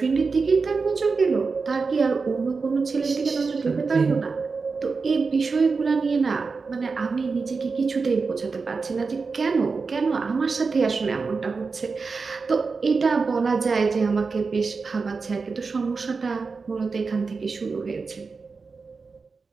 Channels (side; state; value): left; quieter; 4.6 dB